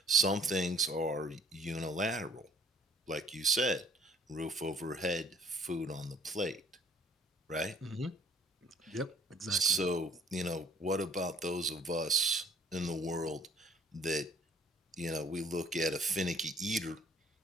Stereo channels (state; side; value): normal; both; correlation 0.56